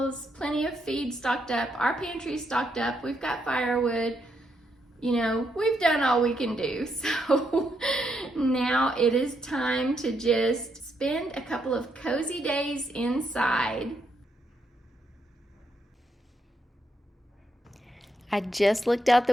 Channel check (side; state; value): both; normal; correlation 0.78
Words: plenty of feed stocked up, our pantry stocked up, we've got firewood, you know, we've done all we can do. So now it is time to just spend a couple of cozy days inside. I just looked out